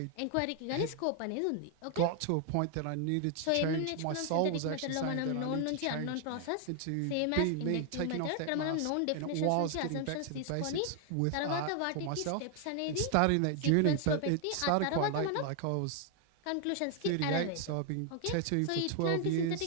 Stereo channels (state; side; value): different; both; correlation 0.00